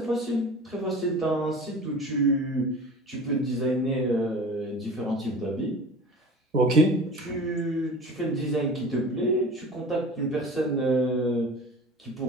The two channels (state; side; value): normal; both; correlation 0.38